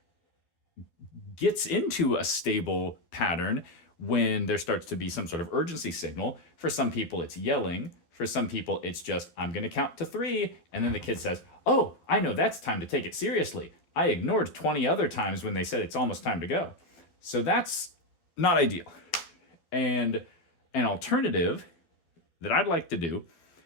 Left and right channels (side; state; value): right; late; 12 ms